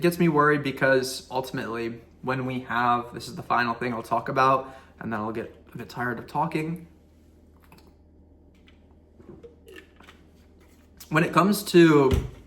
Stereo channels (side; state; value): both; identical; correlation 1.00